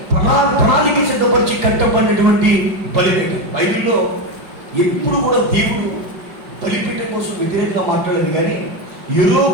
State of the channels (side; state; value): left; late; 5.3 ms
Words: ప్రణాళిక సిద్ధపరిచి కట్టబడినటువంటి బలిపీఠం. బైబిల్లో ఎప్పుడు కూడా దేవుడు బలిపీఠం కోసం వ్యతిరేకంగా మాట్లాడలేదు, కానీ